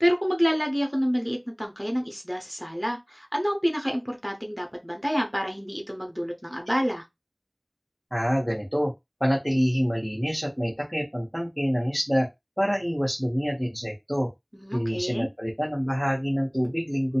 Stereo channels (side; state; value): both; identical; correlation 1.00